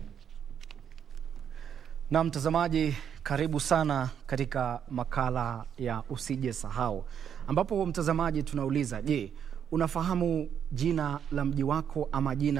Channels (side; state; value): left; quieter; 8.3 dB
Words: Na mtazamaji, karibu sana katika makala ya usije sahau, ambapo mtazamaji tunauliza, je, unafahamu jina la mji wako ama